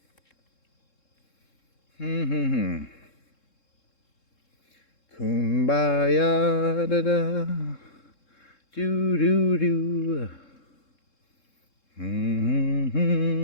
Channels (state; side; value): late; right; 3.7 ms